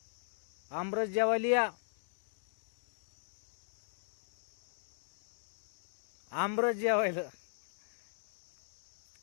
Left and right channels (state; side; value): silent; right; digital silence